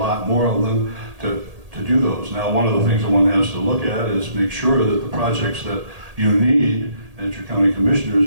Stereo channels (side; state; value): left; late; 1.8 ms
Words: more of them to do those. Now, one of the things that one has to look at is make sure that the projects that you need, and that your county commissioners